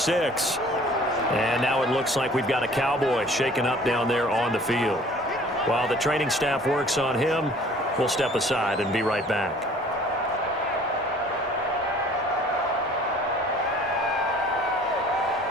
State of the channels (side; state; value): both; normal; correlation 0.52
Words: And now it looks like we've got a Cowboy shaken up down there on the field. While the training staff works on him, we'll step aside and be right back.